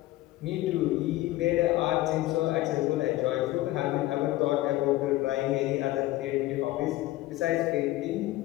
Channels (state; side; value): quieter; right; 16.8 dB